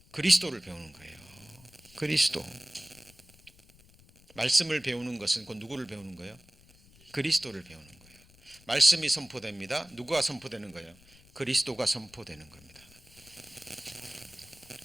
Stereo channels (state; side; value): noise; left; rumble, 26 dB below the sound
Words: 그리스도를 배우는 거예요. 그리스도. 말씀을 배우는 것은 곧 누구를 배우는 거예요? 그리스도를 배우는 거예요. 말씀이 선포됩니다. 누가 선포되는 거예요? 그리스도가 선포되는 겁니다.